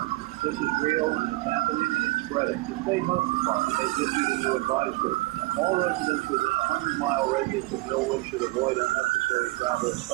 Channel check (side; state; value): left; quieter; 21.1 dB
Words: This is real, and it's happening, and it's spreading. The state health department has issued a new advisory. All residents within a 100-mile radius of Millwood should avoid unnecessary travel,